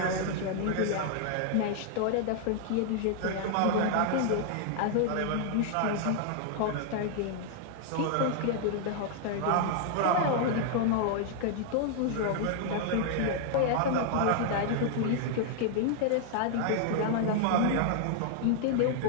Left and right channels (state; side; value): different; both; correlation -0.01